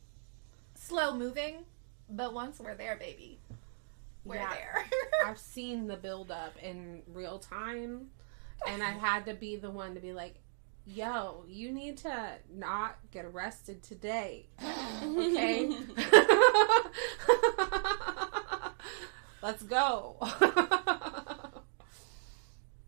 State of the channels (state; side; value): silent; left; digital silence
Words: slow moving, but once we're there, baby, we're there. I've seen the build up in real time, and I had to be the one to be like, yo, you need to not get arrested today. Okay? Let's go.